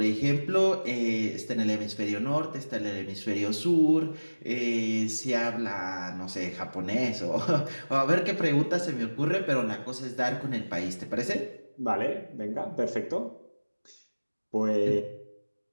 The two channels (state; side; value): inverted; both; correlation -1.00